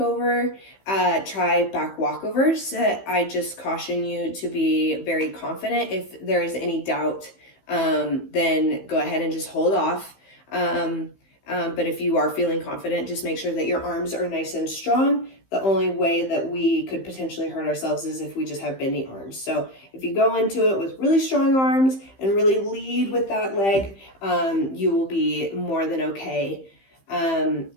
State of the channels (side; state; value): right; late; 15 ms